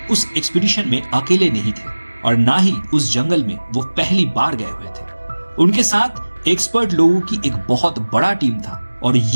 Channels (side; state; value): both; inverted; correlation -1.00